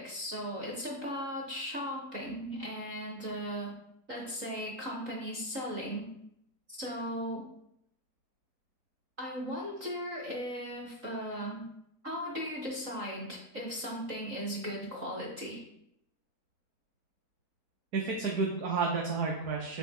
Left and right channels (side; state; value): left; late; 3.8 ms